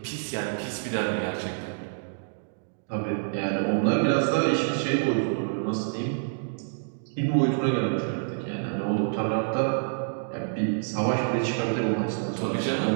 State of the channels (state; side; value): silent; left; digital silence